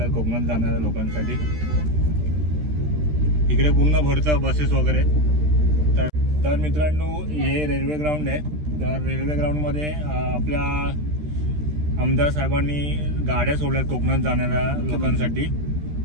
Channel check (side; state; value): left; late; 13 ms